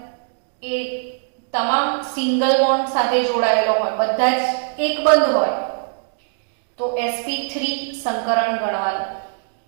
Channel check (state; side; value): silent; left; digital silence